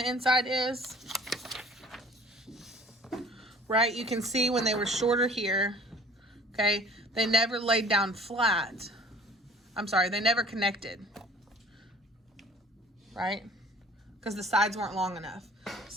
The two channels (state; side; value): normal; both; correlation 0.50